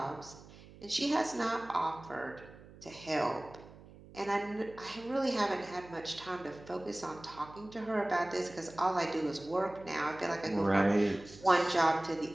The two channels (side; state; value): right; noise; hum, 20 dB below the sound